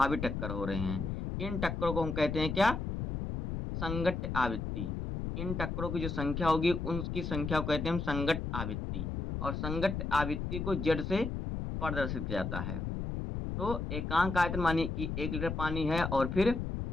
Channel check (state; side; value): noise; left; rumble, 3 dB below the sound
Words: टक्कर हो रहे हैं। इन टक्करों को हम कहते हैं क्या, संगत आवृत्ति। इन टक्करों की जो संख्या होगी उनकी संख्या को कहते हैं हम संगत आवृत्ति, और संगत आवृत्ति को जेड से प्रदर्शित किया जाता है। तो एकांक आयतन मानिए कि 1 लीटर पानी है, और फिर